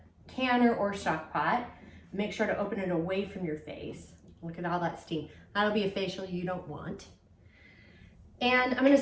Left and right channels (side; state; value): both; identical; correlation 1.00